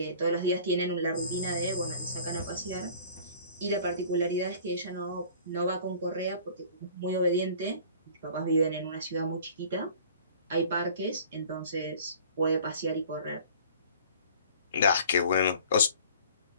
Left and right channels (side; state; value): both; inverted; correlation -0.48